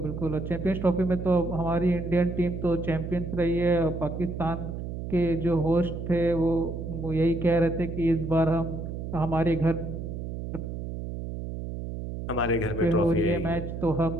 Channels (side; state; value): right; noise; hum, 6 dB below the sound